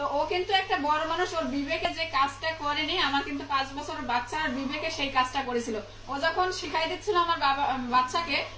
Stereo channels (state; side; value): identical; both; correlation 1.00